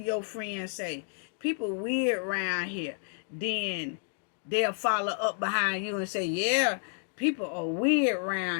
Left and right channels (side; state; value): right; silent; 58 dB below the other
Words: your friends say, people weird around here, then they'll follow up behind you and say, yeah, people are weird